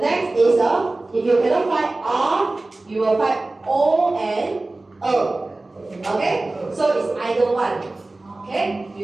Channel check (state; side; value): quieter; left; 3.0 dB